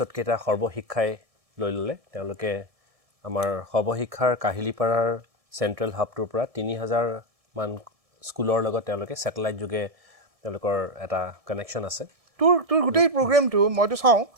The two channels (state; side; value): late; left; 1.7 ms